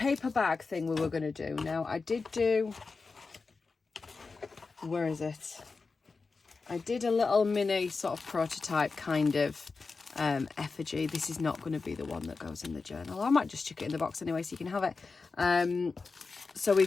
bag thing we were going to do. Now I did do, where is it? I did a little mini sort of prototype kind of effigy. This is not going to be the one that goes in the journal. I might just chuck it in the box anyway so you can have it. So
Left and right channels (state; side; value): quieter; right; 4.3 dB